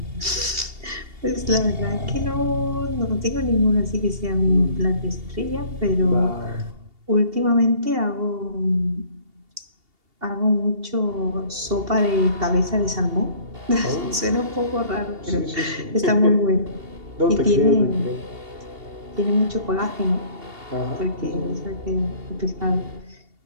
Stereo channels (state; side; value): late; left; 2.8 ms